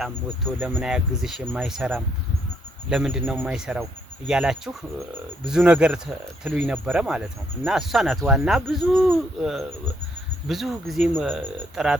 ወጥቶ ለምን አያግዝሽ የማይሰራም ለምንድን ነው የማይሰራው እያላችሁ ብዙ ነገር ትሉኝ ነበረ ማለት ነው። እና እሷ ናት ዋና ብዙ ጊዜም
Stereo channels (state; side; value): normal; both; correlation 0.72